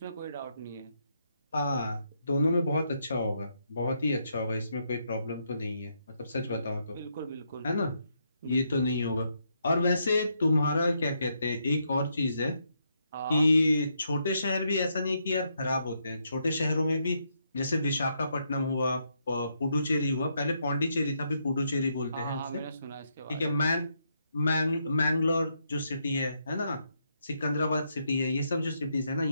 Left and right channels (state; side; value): inverted; both; correlation -0.78